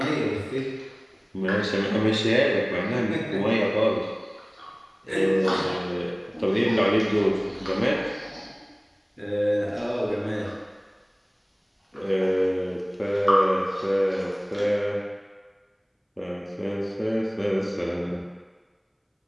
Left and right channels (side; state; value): both; identical; correlation 1.00